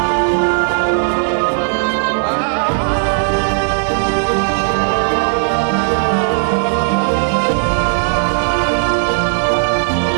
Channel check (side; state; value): left; silent; digital silence